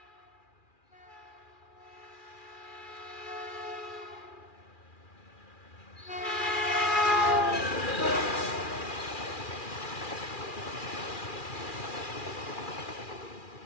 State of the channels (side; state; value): right; late; 2.4 ms